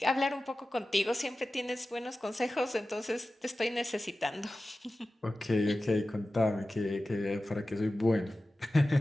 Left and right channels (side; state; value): both; normal; correlation 0.95